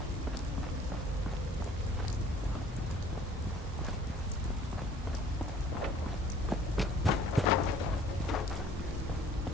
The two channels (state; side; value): normal; both; correlation 0.53